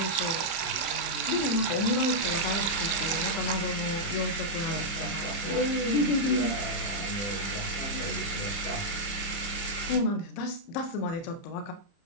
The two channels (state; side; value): late; right; 30 ms